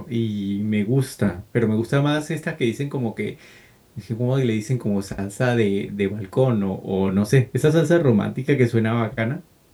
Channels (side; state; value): both; identical; correlation 1.00